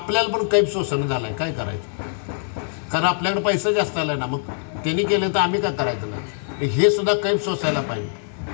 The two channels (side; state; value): right; silent; digital silence